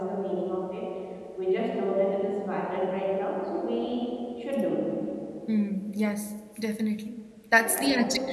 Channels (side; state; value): both; identical; correlation 1.00